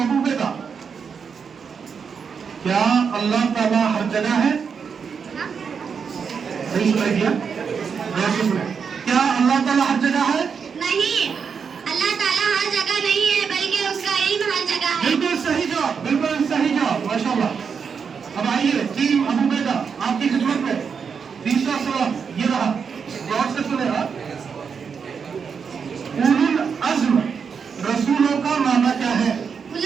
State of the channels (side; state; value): left; quieter; 6.2 dB